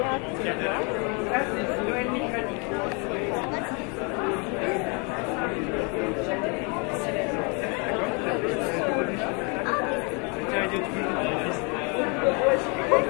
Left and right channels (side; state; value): right; quieter; 33.6 dB